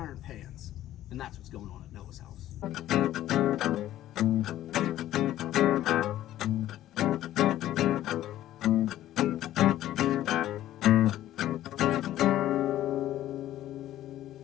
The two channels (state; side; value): quieter; right; 13.5 dB